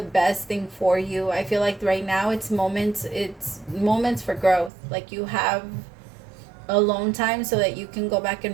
best thing for you. I feel like right now it's moments for growth. Like you have alone time so that you can go back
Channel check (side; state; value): left; drops out; at 4.7 s